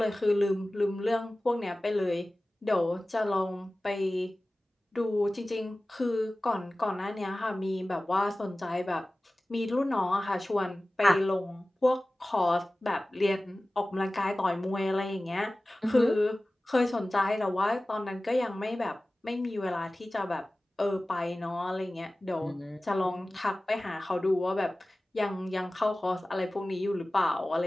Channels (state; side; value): normal; both; correlation 0.97